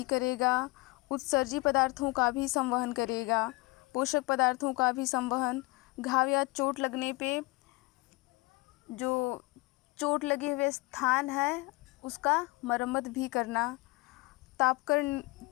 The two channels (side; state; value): right; quieter; 23.9 dB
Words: करेगा, उत्सर्जी पदार्थों का भी संवहन करेगा, पोषक पदार्थों का भी संवहन, घाव या चोट लगने पे जो चोट लगे हुए स्थान है उसका मरम्मत भी करना,